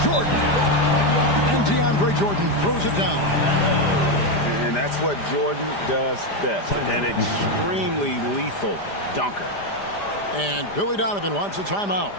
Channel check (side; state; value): right; late; 5.0 ms